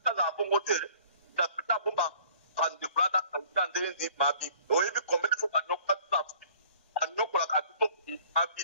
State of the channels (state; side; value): inverted; both; correlation -0.53